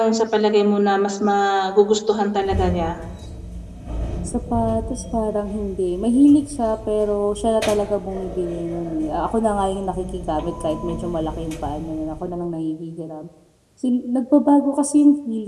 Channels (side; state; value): both; identical; correlation 1.00